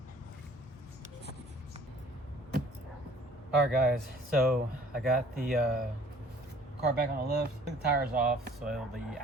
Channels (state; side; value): normal; both; correlation 0.54